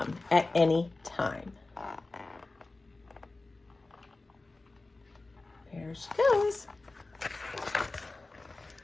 at any time. There she goes.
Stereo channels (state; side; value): quieter; right; 3.2 dB